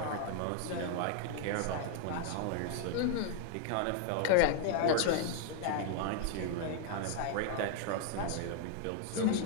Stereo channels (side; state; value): both; different; correlation 0.00